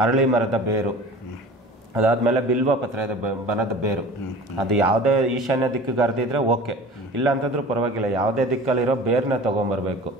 ಅರಳಿ ಮರದ ಬೇರು, ಅದಾದಮೇಲೆ ಬಿಲ್ವ ಪತ್ರದ ಬನದ ಬೇರು. ಅದು ಯಾವುದೇ ಈಶಾನ್ಯ ದಿಕ್ಕಿಗೆ ಹರಿದಿದ್ರೆ ಓಕೆ, ಇಲ್ಲ ಅಂತಂದ್ರೂ ಪರವಾಗಿಲ್ಲ, ಯಾವುದೇ ದಿಕ್ಕಲ್ಲಿರೋ ಬೇರನ್ನ ತೊಗೊಂಬರ್ಬೇಕು.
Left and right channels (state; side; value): normal; both; correlation 0.40